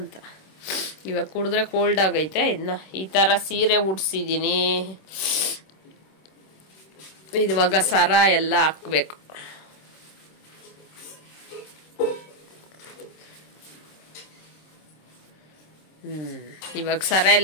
ಇವಾಗ ಕುಡಿದ್ರೆ ಕೋಲ್ಡ್ ಆಗೈತೆ. ಇನ್ನ ಈ ತರ ಸೀರೆ ಉಡ್ಸಿದೀನಿ. ಇವಾಗ ಸರ ಎಲ್ಲ ಹಾಕ್ಬೇಕು. ಇವಾಗ ಸರ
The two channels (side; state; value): right; late; 26 ms